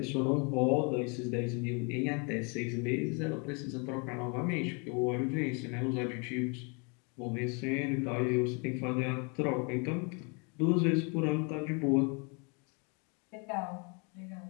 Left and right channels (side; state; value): right; quieter; 34.2 dB